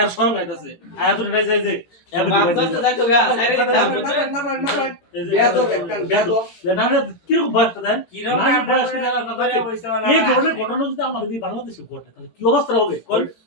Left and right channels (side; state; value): right; late; 18 ms